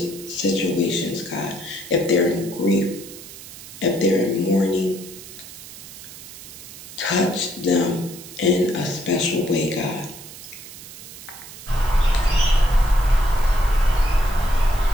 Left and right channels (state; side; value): noise; right; hiss, 15 dB below the sound